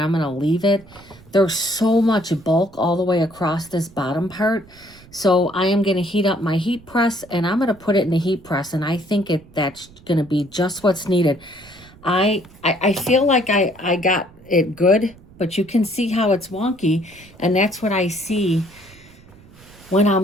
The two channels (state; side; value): noise; right; rumble, 24 dB below the sound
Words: going to leave it. There's so much bulk all the way across this bottom part. So I am going to heat up my heat press, and I'm going to put it in the heat press, and I think that's going to be just what's needed. I feel like I got it good, but you can see how it's wonky, and that's what I see when